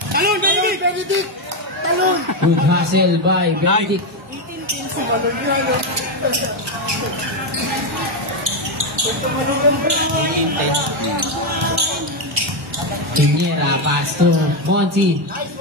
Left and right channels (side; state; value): both; normal; correlation 0.07